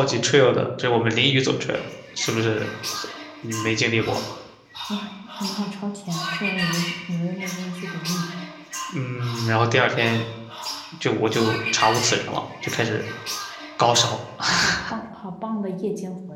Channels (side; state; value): both; identical; correlation 1.00